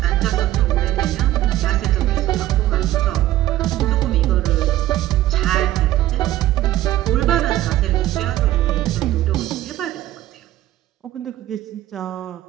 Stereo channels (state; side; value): quieter; left; 14.4 dB